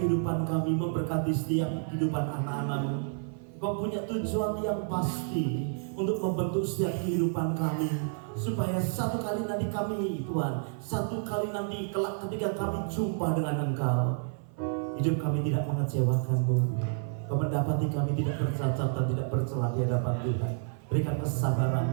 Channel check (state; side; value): silent; left; 55 dB below the other